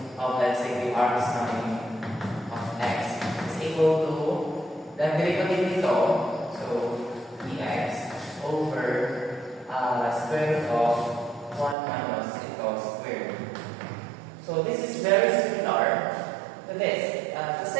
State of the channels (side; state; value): left; drops out; at 11.8 s